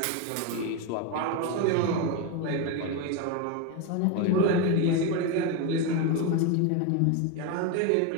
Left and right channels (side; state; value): both; different; correlation 0.03